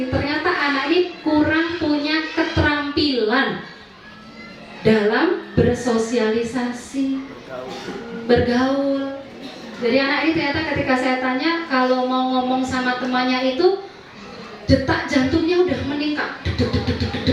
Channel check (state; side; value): identical; both; correlation 1.00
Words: Ternyata anak ini kurang punya keterampilan dalam bersosialisasi, bergaul. Jadi anak ini ternyata ketika saya tanya kalau mau ngomong sama temannya itu detak jantungnya udah meningkat,